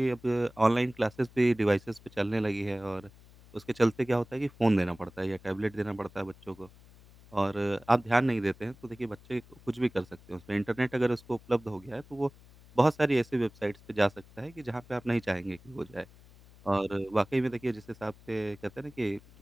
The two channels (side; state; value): left; noise; hum, 24 dB below the sound